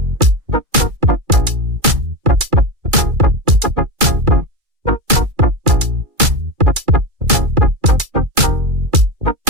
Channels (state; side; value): late; left; 2.3 ms